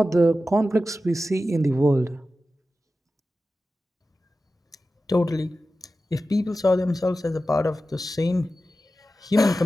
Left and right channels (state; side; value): normal; both; correlation 0.93